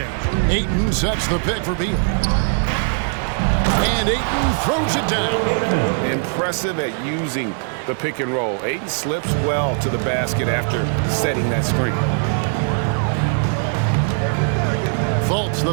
Ayton sets the pick for Beal. And Ayton throws it down. Impressive at using the pick and roll. Ayton slips well to the basket after setting that screen. Fultz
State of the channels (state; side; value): silent; left; 56 dB below the other